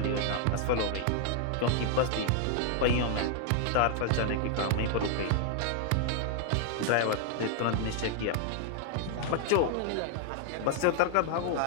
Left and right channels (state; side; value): different; both; correlation 0.00